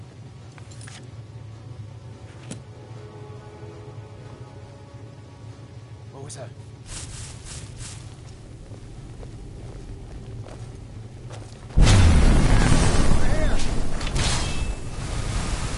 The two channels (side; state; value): both; identical; correlation 1.00